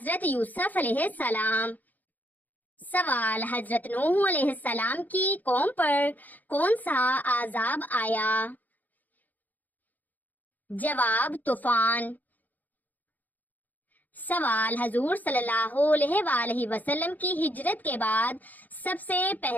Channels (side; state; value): right; late; 0.082 ms